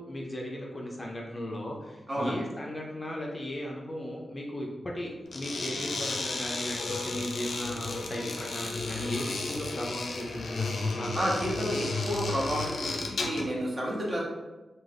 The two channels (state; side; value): normal; both; correlation 0.88